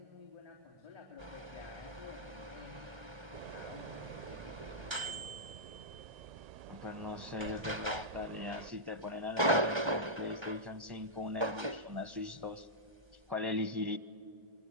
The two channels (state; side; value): late; left; 1.3 ms